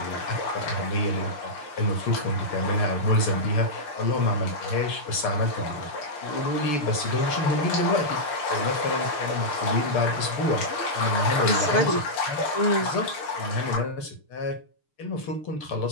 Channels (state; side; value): late; right; 6.7 ms